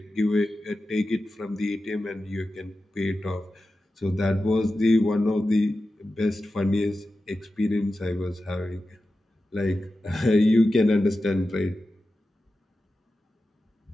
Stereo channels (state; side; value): normal; both; correlation 0.93